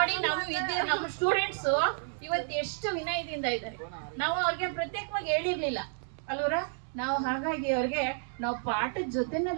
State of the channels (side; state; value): left; silent; digital silence